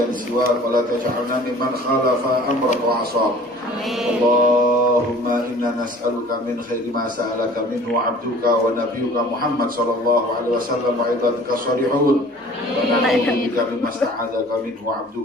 siwak wa la taj'alna mimman khalafa amrak wa 'asab. Allahumma inna nas'aluka min khairi ma sa'alaka minhu 'abduka wa nabiyyuka Muhammad sallallahu alaihi wasallam wa ibadika shalihun. Wa na'udzu bika mimma sta'adzaka minhu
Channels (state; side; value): normal; both; correlation 0.48